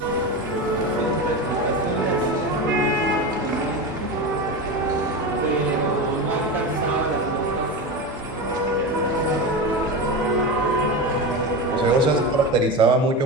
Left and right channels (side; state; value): both; normal; correlation 0.21